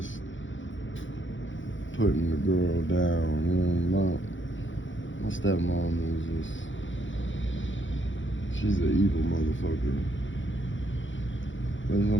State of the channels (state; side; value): late; right; 0.56 ms